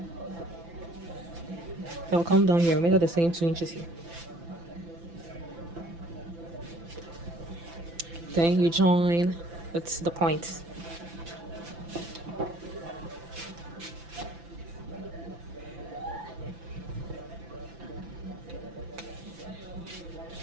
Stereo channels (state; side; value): late; left; 5.9 ms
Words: I'll come down here, measure the same 2 inches here. Then you join with the point.